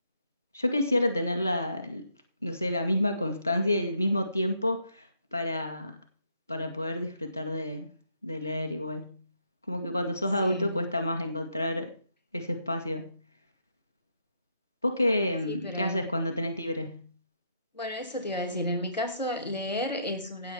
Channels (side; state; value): both; inverted; correlation -0.74